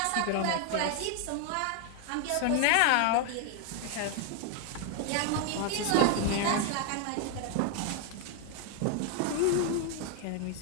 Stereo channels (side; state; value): both; different; correlation 0.00